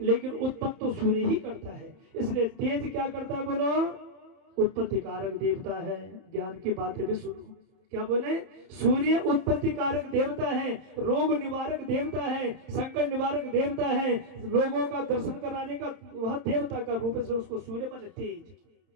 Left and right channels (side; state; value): left; late; 31 ms